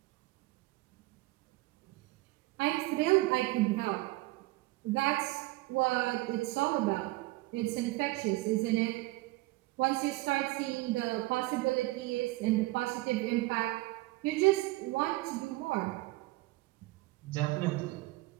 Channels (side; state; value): left; quieter; 20.6 dB